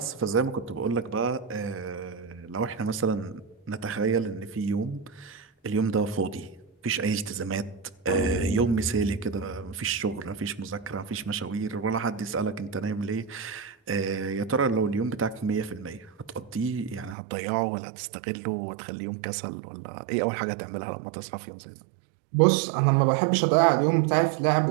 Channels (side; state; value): left; drops out; at 17.2 s